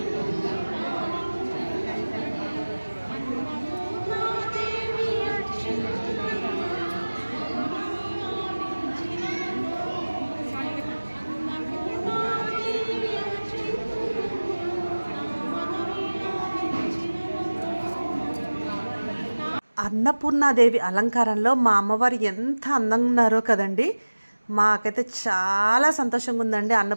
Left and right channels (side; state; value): both; inverted; correlation -1.00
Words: అన్నపూర్ణాదేవి అలంకారంలో మా అమ్మవారు ఎంత అందంగా ఉన్నారో కదండి. మాకైతే చాలా సంతోషంగా ఉందండి